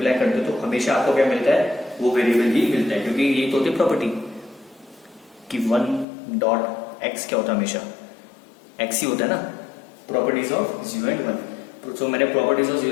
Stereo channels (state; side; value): drops out; right; at 6.1 s